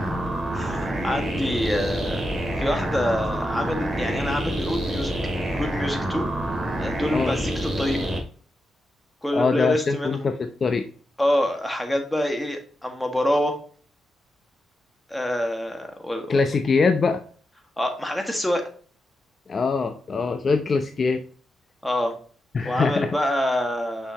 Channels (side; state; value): both; normal; correlation 0.88